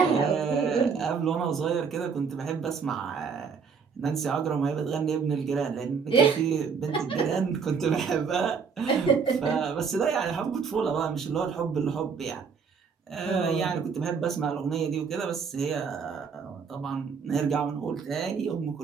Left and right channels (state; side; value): quieter; left; 5.9 dB